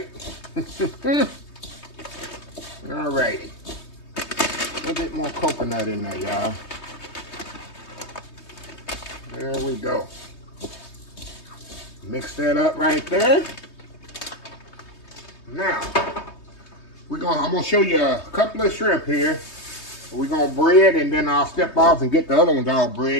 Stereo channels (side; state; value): right; late; 3.2 ms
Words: Alrighty. A little bit more coconut in there, y'all. There we go. Mix that up right there. Now, I'm gonna show you a couple of shrimp here. We're gonna bread, and then I'll step off and get the other ones all